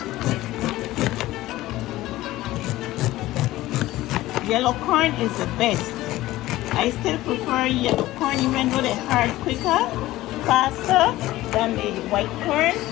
Yellow corn is the best. I still prefer yellow corn even though they hard quicker, faster than the white corn.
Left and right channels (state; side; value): quieter; right; 16.6 dB